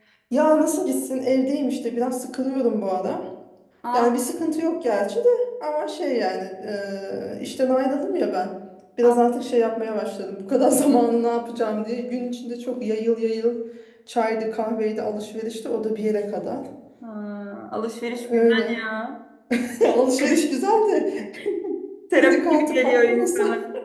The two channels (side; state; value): both; identical; correlation 1.00